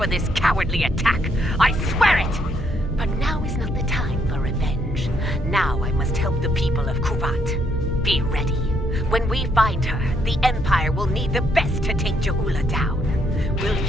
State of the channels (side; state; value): both; normal; correlation 0.73